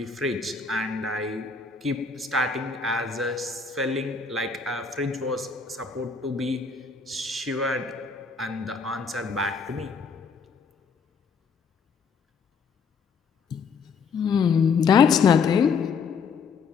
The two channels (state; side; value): quieter; right; 5.3 dB